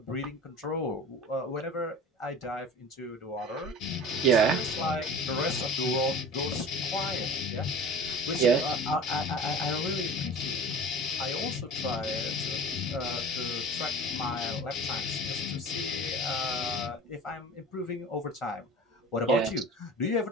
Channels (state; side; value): normal; both; correlation 0.38